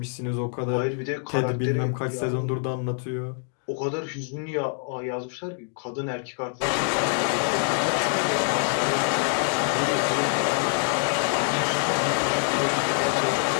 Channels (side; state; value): right; silent; 61 dB below the other